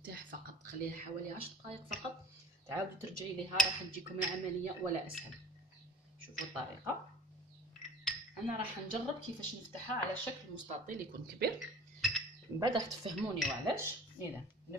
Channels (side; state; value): both; normal; correlation 0.44